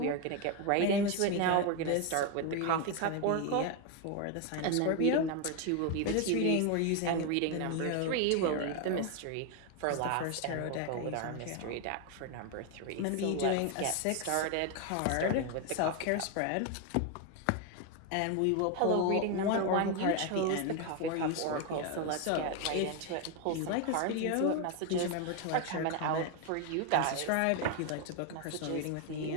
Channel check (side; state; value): both; different; correlation 0.01